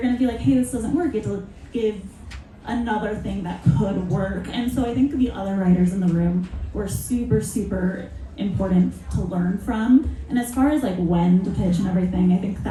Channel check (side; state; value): both; identical; correlation 1.00